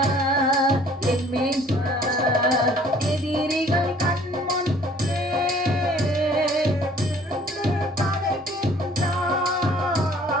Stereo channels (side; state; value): both; normal; correlation 0.55